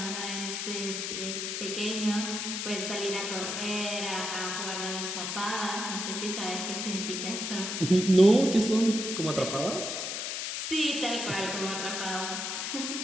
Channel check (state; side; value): noise; left; hiss, 3 dB below the sound